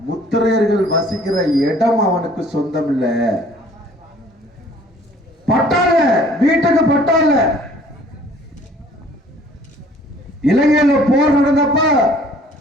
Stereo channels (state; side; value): normal; both; correlation 0.55